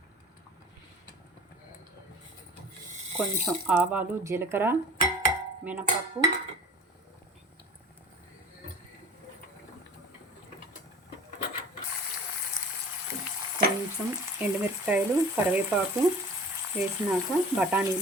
కొంచెం ఆవాలు, జీలకర్ర, మినపప్పు, కొంచెం ఎండుమిరపకాయలు, కరివేపాకు వేసినాక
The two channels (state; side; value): normal; both; correlation 0.43